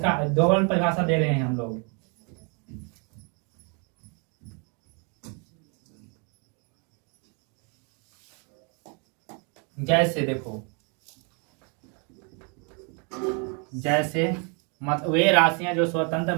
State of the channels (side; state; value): left; quieter; 35.5 dB